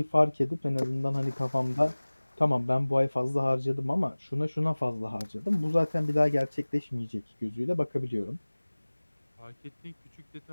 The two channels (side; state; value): both; inverted; correlation -1.00